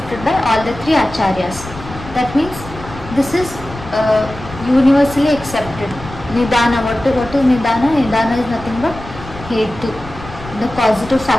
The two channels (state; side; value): noise; left; rumble, 14 dB below the sound